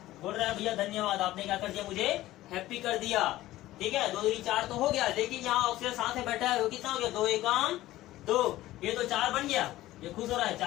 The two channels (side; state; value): right; quieter; 15.9 dB